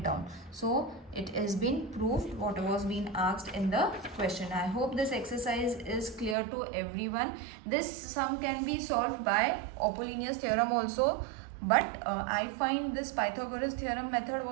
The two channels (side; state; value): left; drops out; at 6.4 s